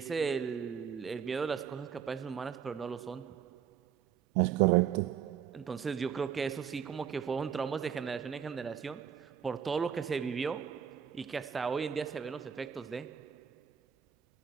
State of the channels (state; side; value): quieter; left; 8.1 dB